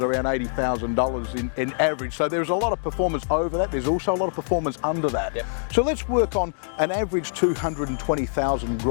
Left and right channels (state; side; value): silent; right; digital silence